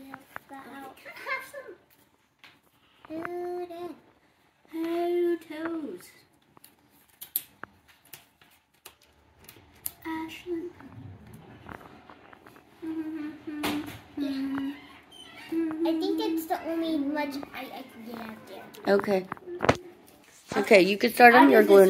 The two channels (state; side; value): identical; both; correlation 1.00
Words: that out. Have some Good in. toes. Ashlyn. I think it's the only much I can get out there. Okay. Okay, you can start on your glue